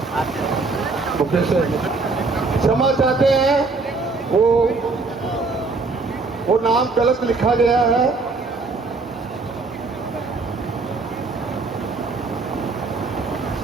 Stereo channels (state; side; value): quieter; left; 3.9 dB